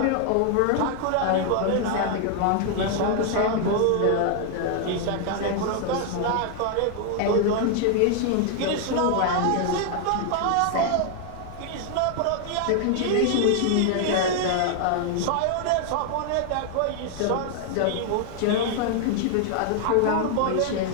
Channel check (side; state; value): both; different; correlation 0.00